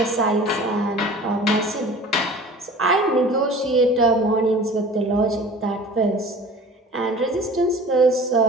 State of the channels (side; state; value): both; normal; correlation 0.43